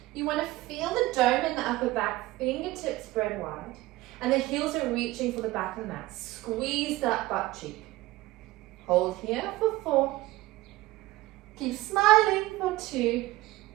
You want to feel the dome in the upper back, fingertips spread wide, and the heels are reaching for the back of the mat. Squeeze that butt cheek. Hold here for 4. Keep smiling for 2.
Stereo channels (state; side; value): quieter; left; 18.5 dB